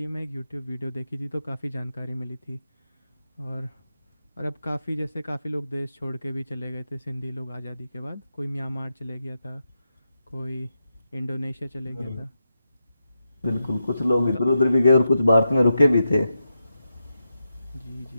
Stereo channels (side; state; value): both; inverted; correlation -0.87